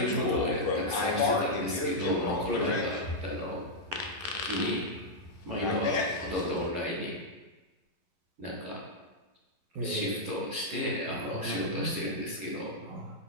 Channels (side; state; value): left; late; 11 ms